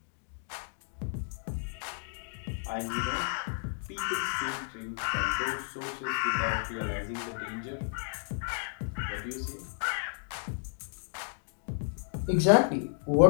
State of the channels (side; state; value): right; silent; digital silence